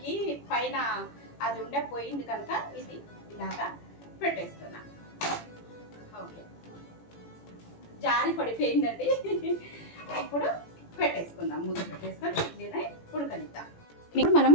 పైన అది పోయింది కనుక ఇది ఇలాగా పెట్టేస్తున్నా. ఓకే, జారి పడిపోయిందండి. ఇప్పుడు పెట్టేసుకుందాం. మూత పెట్టేసుకొని ఇడ్లీని ఉడకనిద్దాం. ఇప్పుడు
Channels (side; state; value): right; late; 18 ms